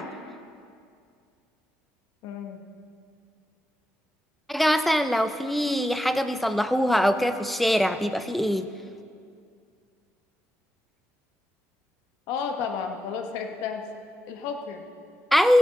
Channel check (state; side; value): normal; both; correlation 0.89